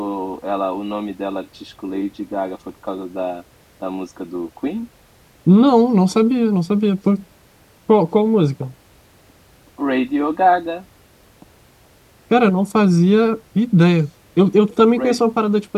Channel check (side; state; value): both; identical; correlation 1.00